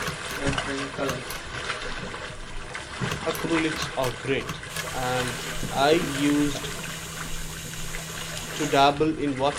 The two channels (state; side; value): identical; both; correlation 1.00